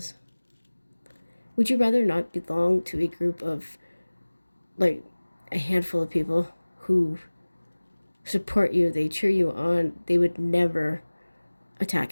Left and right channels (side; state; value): both; inverted; correlation -1.00